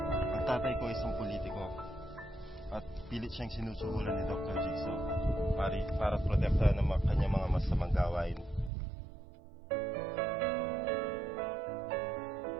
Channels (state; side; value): drops out; left; at 8.7 s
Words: Ang tatay ko isang politiko at pilit siyang sinusuhulan ni Dr. Jigsaw para protektahan ng kanyang mga masamang gawain.